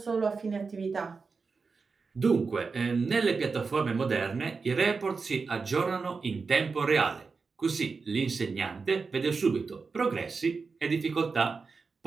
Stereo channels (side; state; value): left; quieter; 4.7 dB